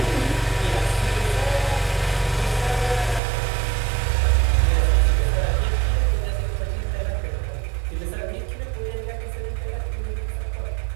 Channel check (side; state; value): left; drops out; at 3.2 s